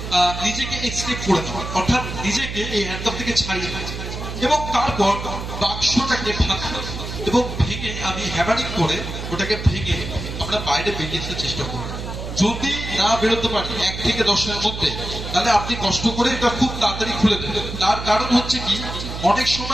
নিজেকে এক্সকেপ করে নেওয়ার, অর্থাৎ নিজেকে এই হ্যান্ডকাপ থেকে ছাড়িয়ে নেওয়া এবং তারপর বাক্সটাকে ভাঙা এবং ভেঙে আমি হ্যামারিং করে ওটাকে ভেঙে আমরা বাইরে বেরিয়ে আসার চেষ্টা করব। যদি না বেরোতে পারি 1 থেকে 10-এর মধ্যে, তাহলে আপনি কষ্ট করে এটা খুব তাড়াতাড়ি খুলে দেবেন। তার কারণ হচ্ছে কি, অনেক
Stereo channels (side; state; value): right; noise; hum, 7 dB below the sound